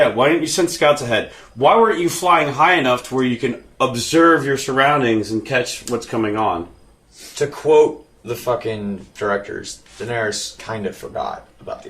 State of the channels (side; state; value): both; identical; correlation 1.00